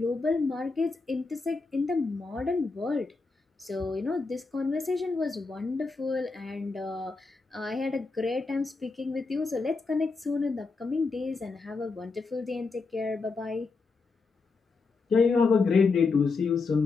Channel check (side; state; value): right; quieter; 4.2 dB